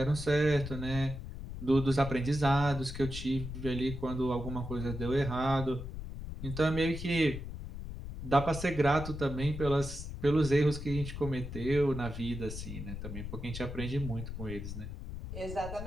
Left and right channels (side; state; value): left; noise; rumble, 8 dB below the sound